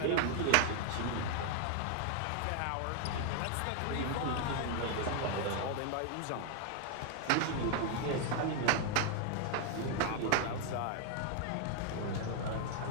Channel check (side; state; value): both; different; correlation 0.00